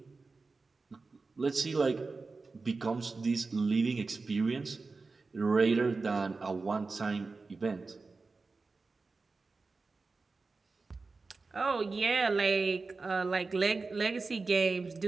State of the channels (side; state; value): left; quieter; 4.0 dB